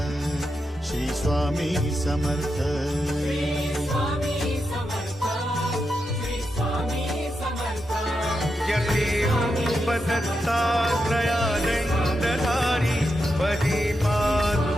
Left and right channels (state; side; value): normal; both; correlation 0.86